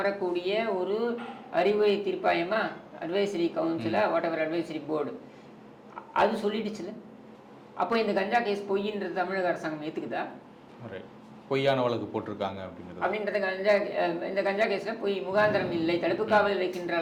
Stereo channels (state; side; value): identical; both; correlation 1.00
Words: ஒரு அறிவுரை தீர்ப்பாயமா, அட்வைசரி கவுன்சிலா, வாட் எவர் அட்வைசரி போர்டு, அது சொல்லிடுச்சுல. அப்போ இந்த கஞ்சா கேஸ் பொய்ன்றது தமிழக அரசாங்கம் ஏற்றுக்குதா? பொய்யான வழக்கு போட்டிருக்காங்க அப்படின்றது இந்த கஞ்சா கேஸில் பொய், முகாந்திரம் இல்லை, தடுப்பு காவலில் வைக்கின்ற